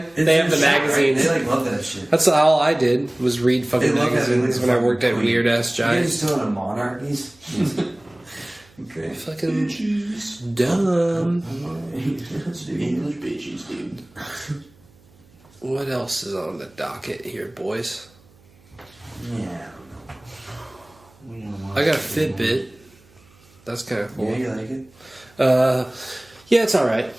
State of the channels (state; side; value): noise; right; hum, 29 dB below the sound